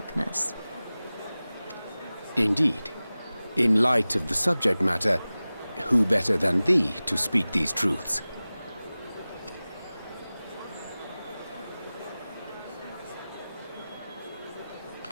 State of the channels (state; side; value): inverted; both; correlation -0.97